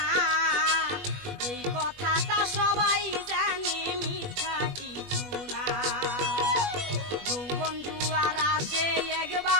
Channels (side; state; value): left; late; 21 ms